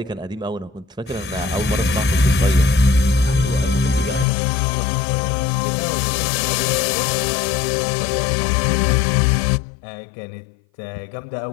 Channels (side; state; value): right; drops out; at 4.2 s